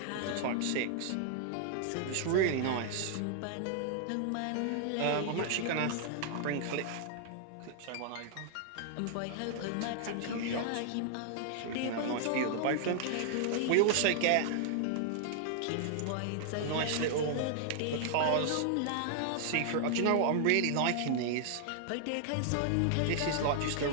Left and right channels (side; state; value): both; different; correlation -0.01